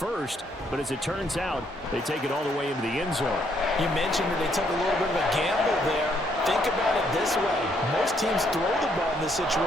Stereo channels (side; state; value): both; normal; correlation 0.71